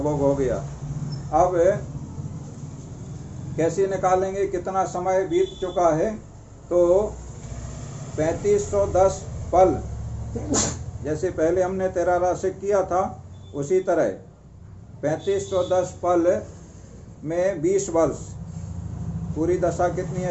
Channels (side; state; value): both; identical; correlation 1.00